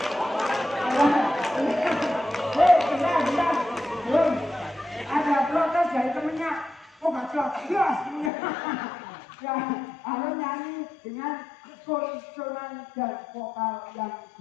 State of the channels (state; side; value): drops out; right; at 8.3 s